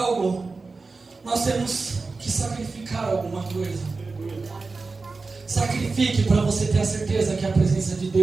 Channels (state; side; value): quieter; left; 4.0 dB